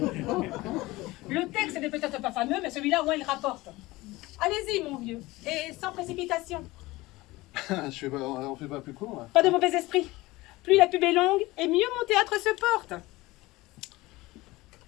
Le texte n'est peut-être pas fameux, mais celui-là, au moins, il rapporte. Allez-y, mon vieux, et sans précipitation. On fait pas plus court, là. Pas de mauvais esprit. Plus la pub est longue, et mieux mon théâtre se porte.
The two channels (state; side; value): quieter; right; 20.1 dB